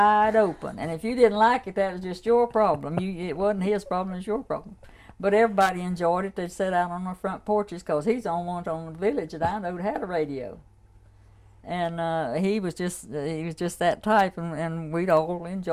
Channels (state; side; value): identical; both; correlation 1.00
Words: open. And if you didn't like it, that was just your problem. It wasn't his problem, it was your problem. But everybody enjoyed it. They'd sit out on the front porches because he's the only one on the village that I know that had a radio. And he was just that type, and we'd all